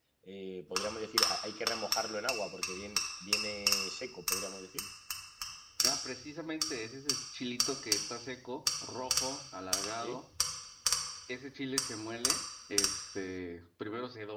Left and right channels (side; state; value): both; identical; correlation 1.00